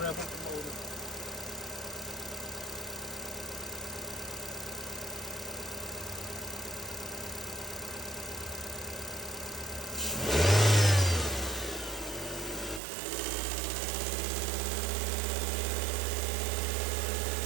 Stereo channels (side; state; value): left; drops out; at 12.8 s